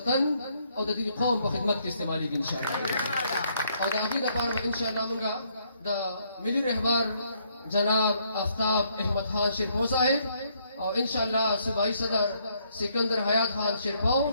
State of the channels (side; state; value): both; inverted; correlation -0.70